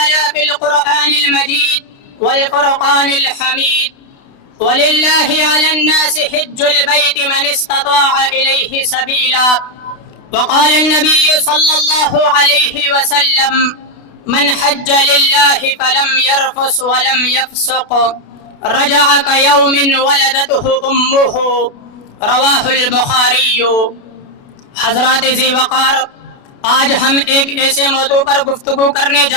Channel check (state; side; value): late; right; 29 ms